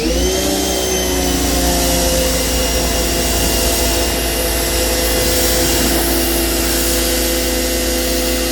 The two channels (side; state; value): both; identical; correlation 1.00